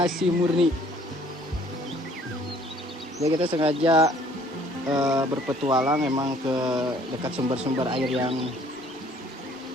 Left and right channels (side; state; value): both; normal; correlation 0.58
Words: murni. Jadi kita sengaja berpetualang emang ke dekat sumber-sumber air yang